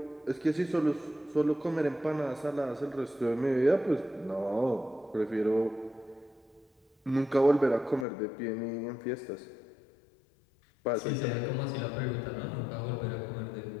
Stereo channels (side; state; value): right; drops out; at 8.1 s